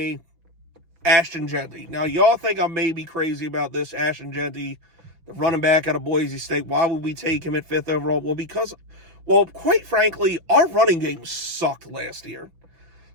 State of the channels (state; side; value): late; left; 6.0 ms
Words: Ashton Jeanty. Now, y'all think I may be crazy about this. Ashton Jeanty, the running back out of Boise State. Why would we take him at 5th overall? Well, quite frankly, our running game sucked last year.